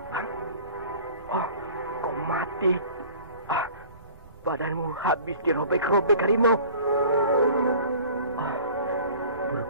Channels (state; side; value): inverted; both; correlation -0.45